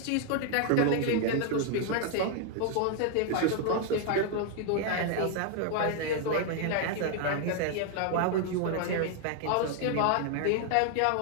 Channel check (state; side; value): different; both; correlation 0.00